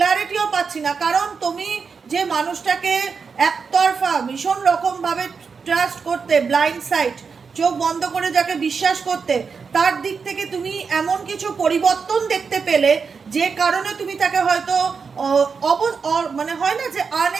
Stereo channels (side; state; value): left; quieter; 5.5 dB